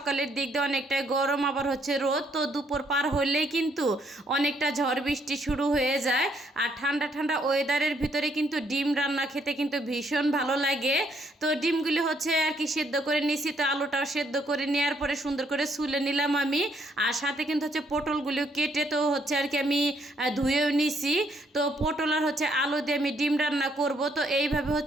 দিক দিয়ে অনেকটা গরম, আবার হচ্ছে রোদ, তো দুপুর পার হলেই কিন্তু অনেকটা ঝড় বৃষ্টি শুরু হয়ে যায়। আর ঠান্ডা ঠান্ডা ওয়েদারের ভিতরে কিন্তু ডিম রান্না খেতে কিন্তু ভীষণ ভালো লাগে। তো ডিমগুলি হচ্ছে আর কি সেদ্ধ করে নিছি, তো আলুটাও সেদ্ধ করে নেওয়ার পরে সুন্দর করে ছুলে নিলাম আমি। আর সাথে কিন্তু হচ্ছে পটলগুলিও কেটে তো হচ্ছে আর কি আমি ধুয়েও নিছি। তো পটল আর হচ্ছে আলু দিয়ে আমি ডিম রান্না করব। তো এইভাবে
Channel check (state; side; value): normal; both; correlation 0.71